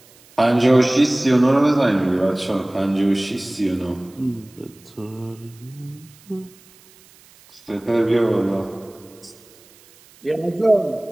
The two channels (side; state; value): right; noise; hiss, 27 dB below the sound